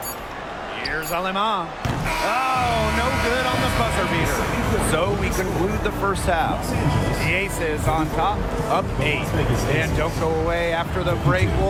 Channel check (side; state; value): both; identical; correlation 1.00